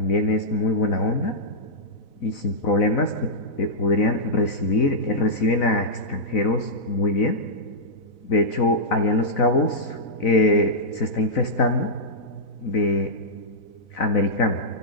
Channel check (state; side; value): late; right; 4.0 ms